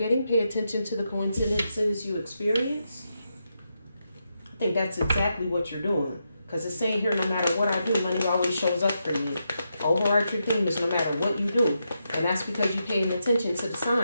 Pay attention to the coincidences you experience. I think that's exactly what you're doing. Because it's saying here, no matter what I do, money always shows up for me. Overarching theme is no matter what you do. And that's because you're paying attention to the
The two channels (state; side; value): inverted; both; correlation -0.84